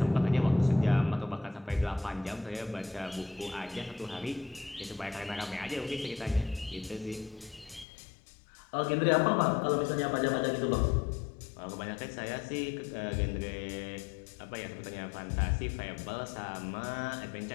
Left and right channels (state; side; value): drops out; right; at 7.9 s